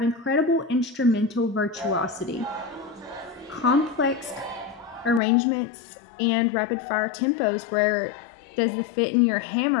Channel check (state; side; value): drops out; right; at 5.2 s